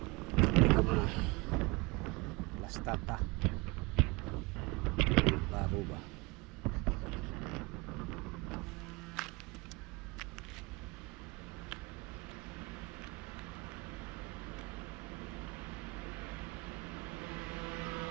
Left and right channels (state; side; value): quieter; left; 25.3 dB